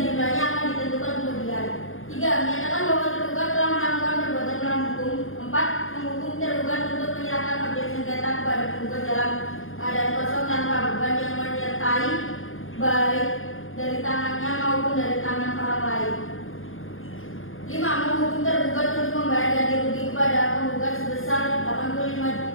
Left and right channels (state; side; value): late; right; 0.59 ms